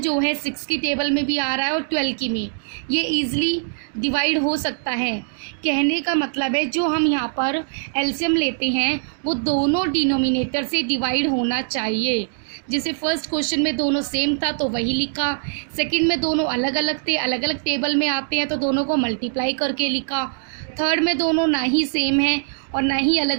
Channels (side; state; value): left; silent; digital silence